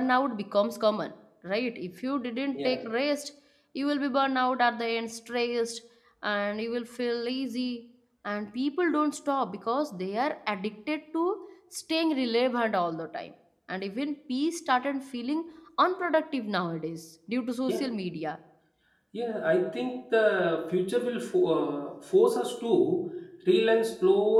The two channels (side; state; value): both; identical; correlation 1.00